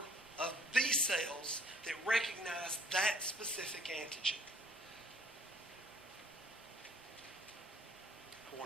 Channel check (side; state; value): both; normal; correlation 0.58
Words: of B cells that recognize that specific antigen. I